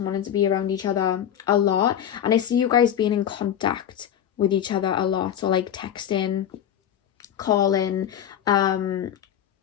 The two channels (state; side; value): quieter; right; 9.8 dB